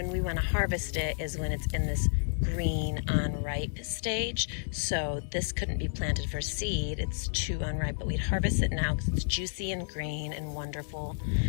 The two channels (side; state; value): right; silent; digital silence